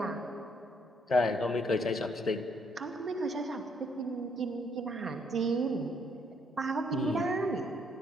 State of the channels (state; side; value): normal; both; correlation 0.69